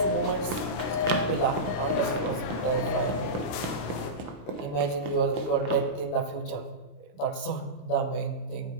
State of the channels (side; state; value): right; late; 27 ms